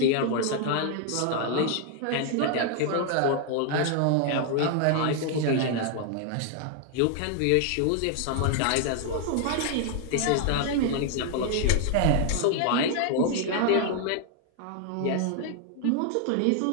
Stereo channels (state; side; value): different; both; correlation 0.00